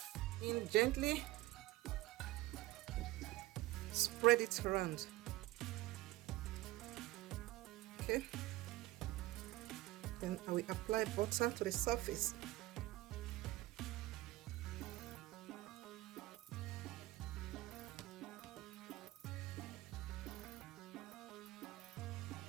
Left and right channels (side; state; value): left; quieter; 18.1 dB